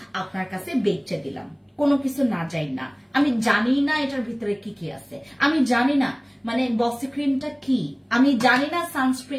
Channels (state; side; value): identical; both; correlation 1.00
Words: আপনার কাছে বেচে দিলাম, কোনো কিছু না যাই না। আমি জানি না এটার ভিতরে কি কি আছে, আমি জানি না মানে বসি ক্রিমটা কি, আমি জানি না